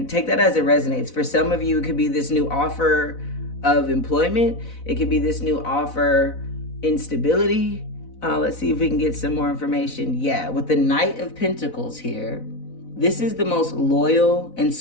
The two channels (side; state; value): right; late; 4.0 ms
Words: take that as it resonates. For some of you, it could be this new offer of employment. It could be this new offer instability. Let's see if we can get some more information. Yeah, with the Knight of Pentacles here, this is the most loyal and